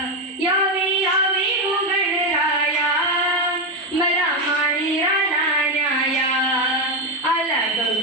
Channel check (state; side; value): normal; both; correlation 0.09